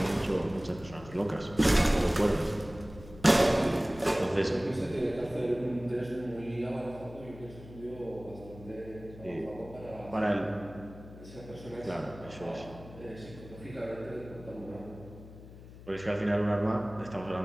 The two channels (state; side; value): noise; left; hum, 17 dB below the sound